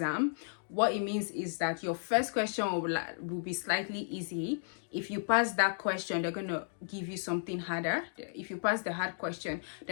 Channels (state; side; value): silent; right; digital silence